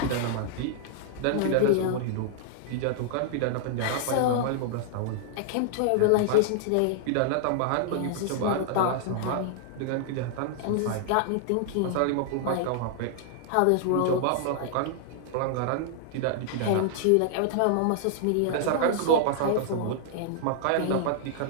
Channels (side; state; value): both; different; correlation -0.01